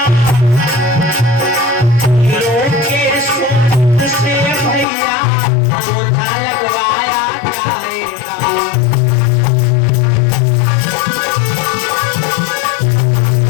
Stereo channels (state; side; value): drops out; right; at 4.9 s